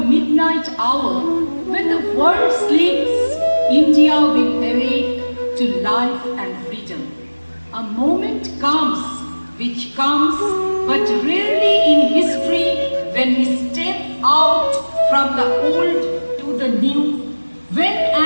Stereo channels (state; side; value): inverted; both; correlation -1.00